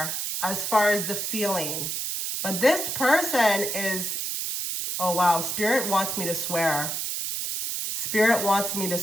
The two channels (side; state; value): right; noise; hiss, 2 dB below the sound